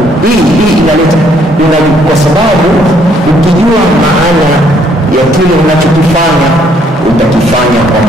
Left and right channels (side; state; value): both; normal; correlation 0.66